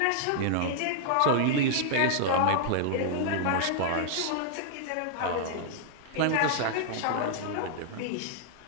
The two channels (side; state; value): both; different; correlation -0.01